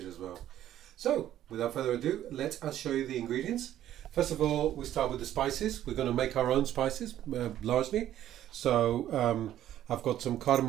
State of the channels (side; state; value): left; quieter; 12.1 dB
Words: as well. So, without further ado, let us show you the ingredients. First of all, we start with the spices. We're going to make our own spices largely. So I've got some